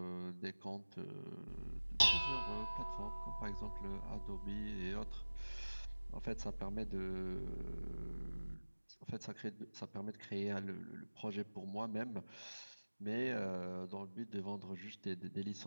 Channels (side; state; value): both; inverted; correlation -1.00